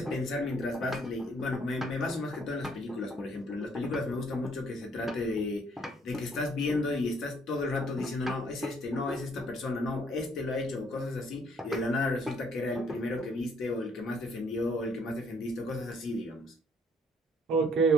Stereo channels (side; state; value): both; normal; correlation 0.64